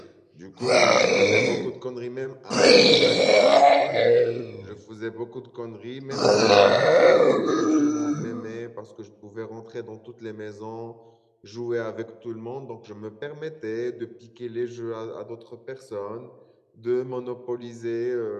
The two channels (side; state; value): both; identical; correlation 1.00